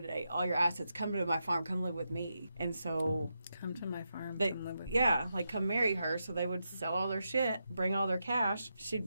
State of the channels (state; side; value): inverted; both; correlation -0.85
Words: all your assets. Come to my farm. Come live with me." And so Come to my farm. they, come live with yeah, like come marry her. So they would sell all their shit, bring all their cash. She'd